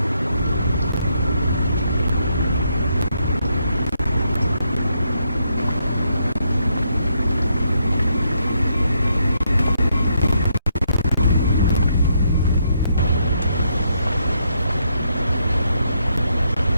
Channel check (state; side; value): inverted; both; correlation -0.77